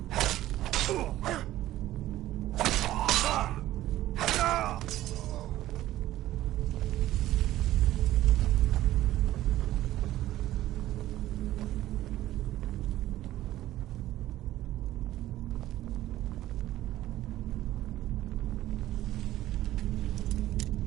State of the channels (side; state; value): left; quieter; 14.6 dB